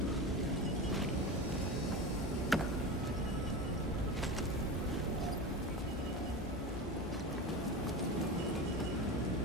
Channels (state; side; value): normal; both; correlation 0.25